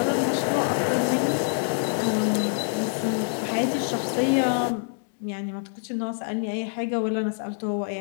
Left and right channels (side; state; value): right; silent; 57 dB below the other